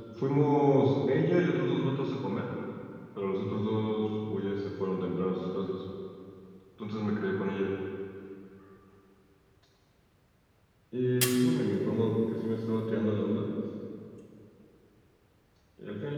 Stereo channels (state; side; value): identical; both; correlation 1.00